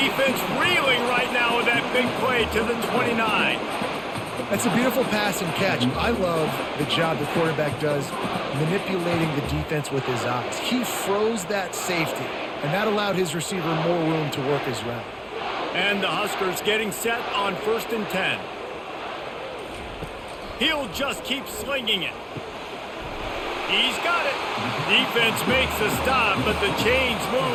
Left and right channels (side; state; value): both; identical; correlation 1.00